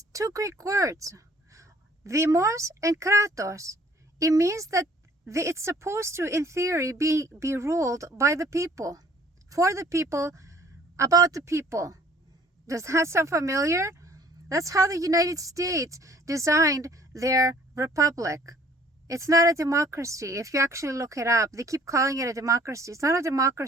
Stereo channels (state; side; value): normal; both; correlation 0.57